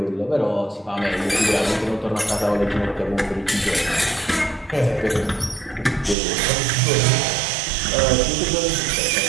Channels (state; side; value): drops out; left; at 6.2 s